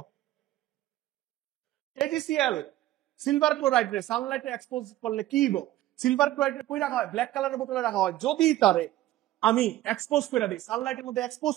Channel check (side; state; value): left; quieter; 14.8 dB